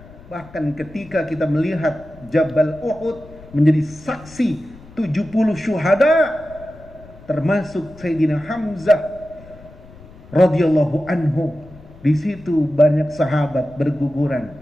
Bahkan ketika kita melihat Jabal Uhud menjadi saksi 70 syuhada, termasuk Sayyidina Hamzah radhiyallahu anhu. Di situ banyak sahabat berguguran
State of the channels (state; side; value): noise; left; rumble, 21 dB below the sound